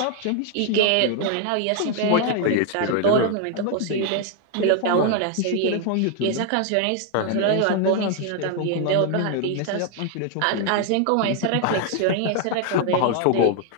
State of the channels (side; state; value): both; different; correlation 0.00